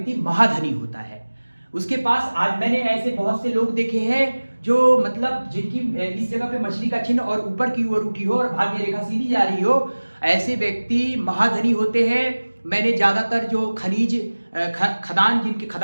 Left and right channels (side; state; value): both; inverted; correlation -1.00